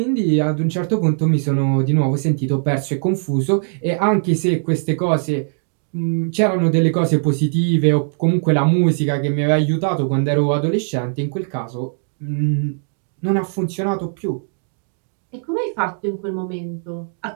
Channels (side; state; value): left; silent; digital silence